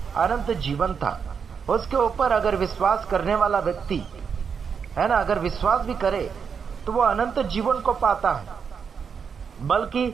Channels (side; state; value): left; quieter; 6.4 dB